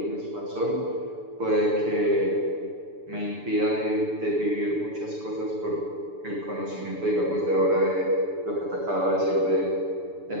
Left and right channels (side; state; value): left; late; 6.9 ms